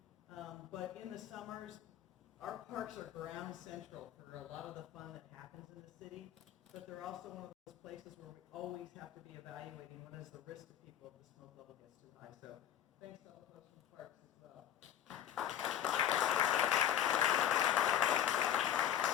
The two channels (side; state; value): right; quieter; 10.4 dB